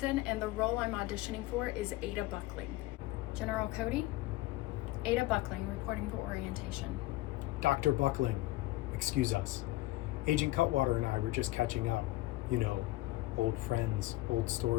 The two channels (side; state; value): right; quieter; 18.2 dB